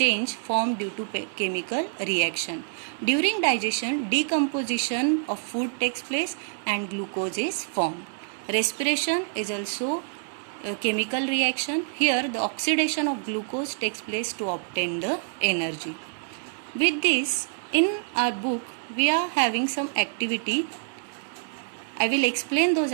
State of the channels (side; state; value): left; silent; digital silence